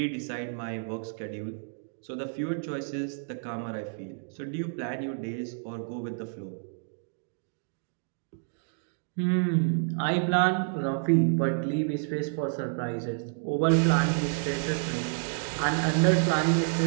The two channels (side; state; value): left; silent; digital silence